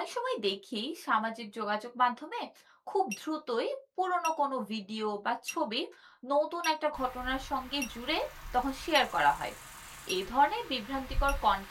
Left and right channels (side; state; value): both; identical; correlation 1.00